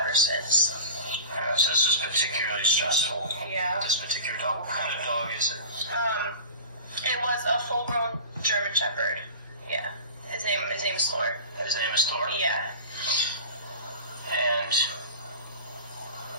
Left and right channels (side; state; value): both; inverted; correlation -0.34